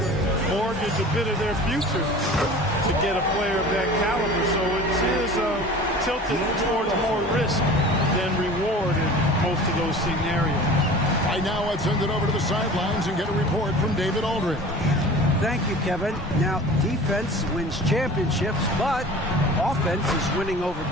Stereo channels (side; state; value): both; normal; correlation 0.40